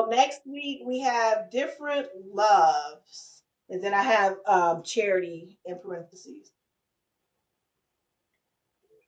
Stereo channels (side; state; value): both; identical; correlation 1.00